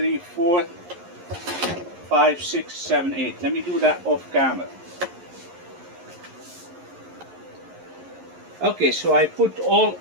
4, 5, 6, 7, 8. Let me do that off camera. Okay, so I put all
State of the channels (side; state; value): left; late; 11 ms